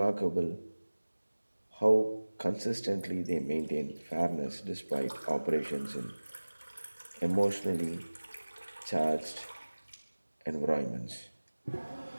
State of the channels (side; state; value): both; inverted; correlation -1.00